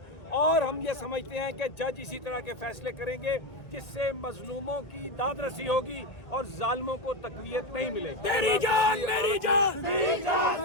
और हम ये समझते हैं कि जज इसी तरह के फैसले करेंगे जिससे मजलूमों की दादरसी होगी और जालिमों को तकवीत नहीं मिलेगी। तेरी जान मेरी जान, तेरी जान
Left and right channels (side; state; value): right; late; 1.6 ms